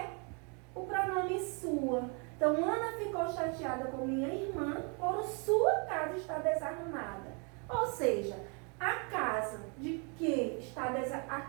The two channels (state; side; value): quieter; left; 35.8 dB